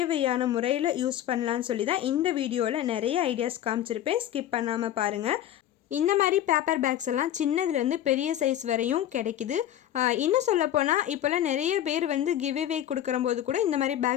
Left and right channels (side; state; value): right; quieter; 11.7 dB